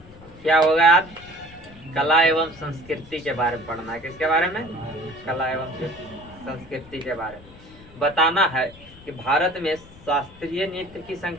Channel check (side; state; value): left; noise; rumble, 21 dB below the sound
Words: क्या होगा आज? कला एवं संस्कृति के बारे में पढ़ना है। किसके बारे में? कला एवं संस्कृति के बारे में बताना है कि भारत में शास्त्रीय नृत्य की